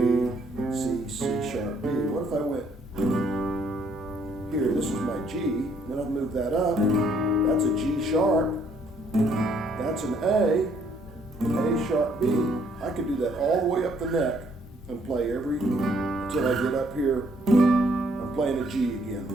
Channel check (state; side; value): normal; both; correlation 0.67